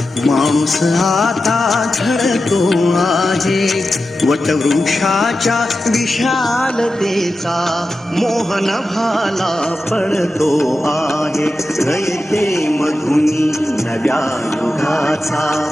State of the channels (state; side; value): normal; both; correlation 0.92